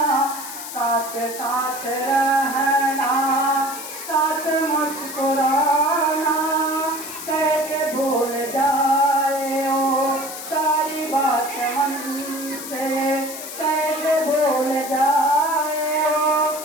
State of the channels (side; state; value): left; noise; hiss, 10 dB below the sound